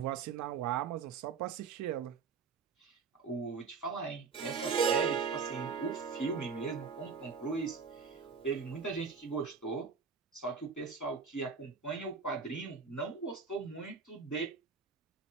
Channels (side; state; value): left; quieter; 5.5 dB